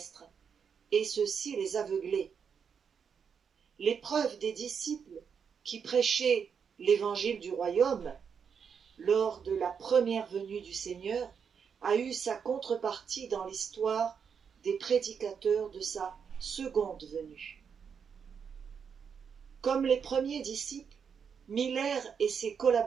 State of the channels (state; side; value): quieter; left; 6.8 dB